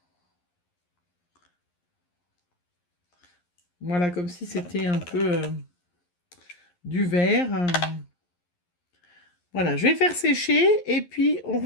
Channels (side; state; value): right; late; 11 ms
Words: Voilà, comme si c'était un peu du vert. Voilà, je vais faire sécher et puis